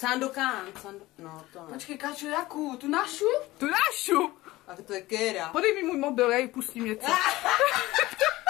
No, to ne. Počkej, Káčo, jakou? Tu našu? Tu našu. A to je Kéra. Podej mi můj mobil, já jí pustím něco.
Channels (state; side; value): quieter; right; 18.3 dB